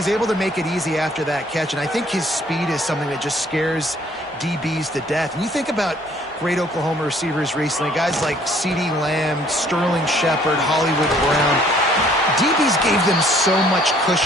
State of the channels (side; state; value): both; normal; correlation 0.60